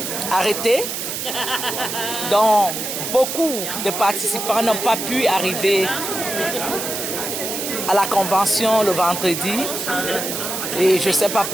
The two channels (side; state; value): right; noise; hiss, 4 dB below the sound